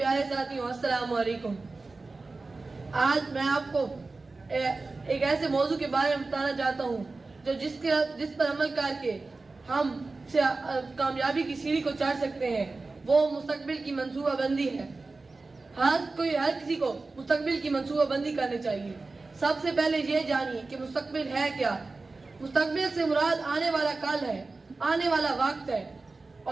ساتھیوں، السلام علیکم. آج میں آپ کو ایک ایسے موضوع کے بارے میں بتانا چاہتا ہوں جو جس پر عمل کر کے ہم کامیابی کی سیڑھی کو چڑھ سکتے ہیں. وہ مستقبل کی منصوبہ بندی ہے. ہر کسی کو مستقبل کی منصوبہ بندی کرنی چاہیے. سب سے پہلے یہ جانیے کہ مستقبل ہے کیا. مستقبل سے مراد آنے والا کل ہے، آنے والا وقت ہے،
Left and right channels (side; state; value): left; quieter; 3.6 dB